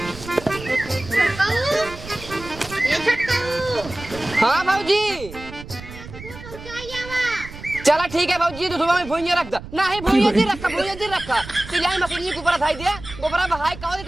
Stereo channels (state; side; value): noise; right; rumble, 14 dB below the sound